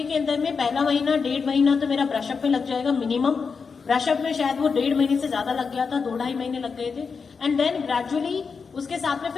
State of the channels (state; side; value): quieter; right; 5.4 dB